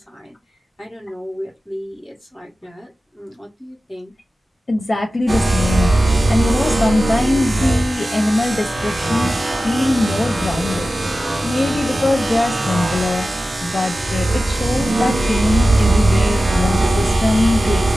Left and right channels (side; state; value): both; normal; correlation 0.95